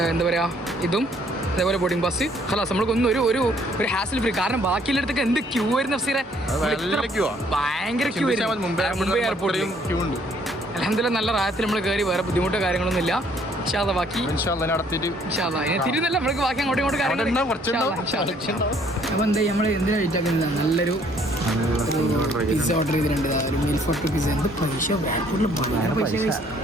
എന്താ പറയാ ഇതും അതേപോലെ ബോർഡിംഗ് പാസ് ഹലാസ്. നമ്മൾക്കൊന്നും ഒരു ഹാസിൽ ഫ്രീ. കാരണം ബാക്കിയുള്ളടത്തൊക്കെ എന്ത് ക്യൂ ആയിരുന്നു അഫ്സീറെ. ഭയങ്കര ക്യൂ ആയിരുന്നു മുംബൈ എയർപോർട്ടിൽ. ക്യൂ ഉണ്ട്. അൽഹംദുലില്ലാ നല്ല റായത്തിൽ നമ്മൾ കയറി. വേറെ ബുദ്ധിമുട്ടോ കാര്യങ്ങളൊന്നും ഇല്ല. ബാക്കി തിരുന്നല്ല നമ്മൾക്ക് ബാക്കി അങ്ങോട്ടും ഇങ്ങോട്ടും കാര്യങ്ങൾ. അപ്പോൾ എന്താ നമ്മൾ എന്തിനാ വെയിറ്റ് ആക്കുന്നത്? നല്ലൊരു പിസ്സ ഓർഡർ ചെയ്തിട്ടുണ്ട്. ഒരു മീൽ ഫോർ 2 പിസ്സ. എന്ത് പൈസ ബാങ്കൂട്ടിൽ വളരെ പൈസ.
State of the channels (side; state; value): both; normal; correlation 0.63